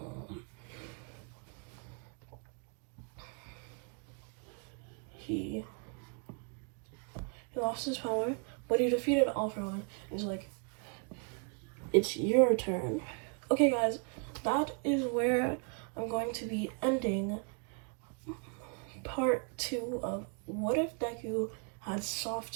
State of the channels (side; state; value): left; quieter; 37.5 dB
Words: He lost his power, but he defeated All For One. He's like, it's your turn. Okay, guys, that is where I'm going to be ending part 2 of What If Deku Had